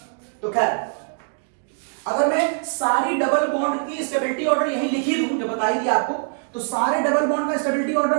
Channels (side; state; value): left; silent; digital silence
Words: तो खैर, अगर मैं सारी डबल बॉन्ड की स्टेबिलिटी ऑर्डर यही लिखी दूं, जो बताई थी आपको, तो सारे डबल बॉन्ड का स्टेबिलिटी ऑर्डर